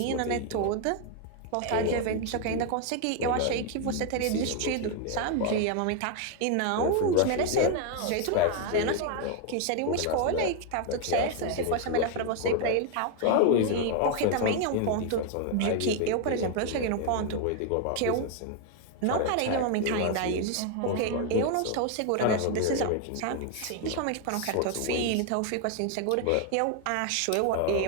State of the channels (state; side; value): different; both; correlation 0.01